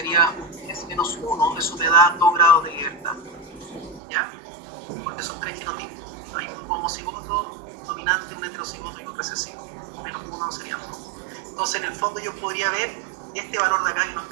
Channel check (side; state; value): left; drops out; at 4.0 s